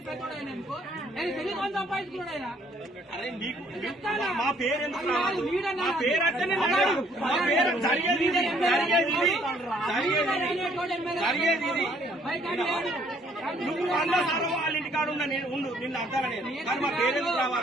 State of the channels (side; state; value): both; normal; correlation 0.63